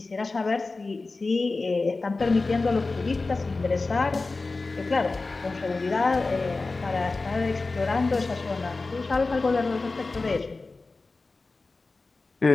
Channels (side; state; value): right; quieter; 3.6 dB